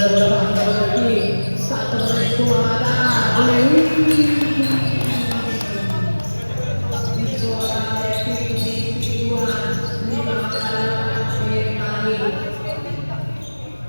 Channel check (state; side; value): inverted; both; correlation -1.00